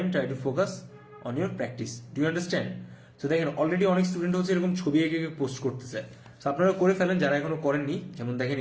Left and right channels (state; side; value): identical; both; correlation 1.00